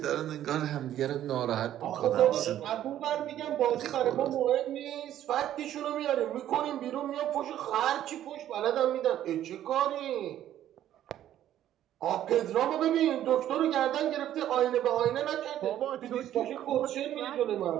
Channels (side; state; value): left; quieter; 11.9 dB